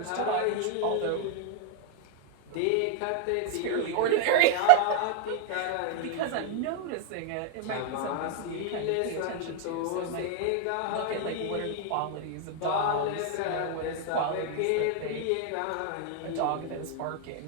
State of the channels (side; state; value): both; different; correlation 0.00